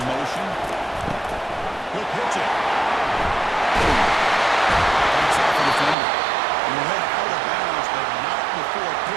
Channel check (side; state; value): left; drops out; at 6.0 s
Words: motion. He'll pitch it. Takes off the defender. He'll head out of bounds, but not before